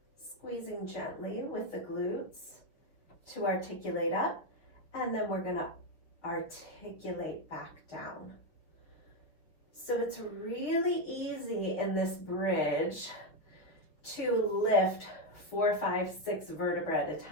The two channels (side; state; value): right; late; 6.3 ms